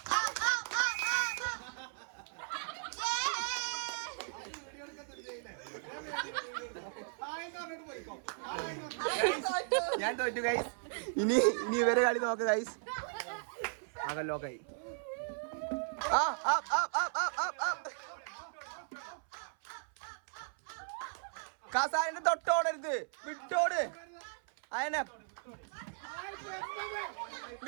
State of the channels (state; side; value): silent; left; 53 dB below the other